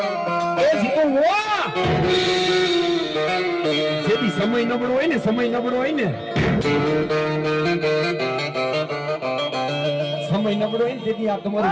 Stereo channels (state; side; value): identical; both; correlation 1.00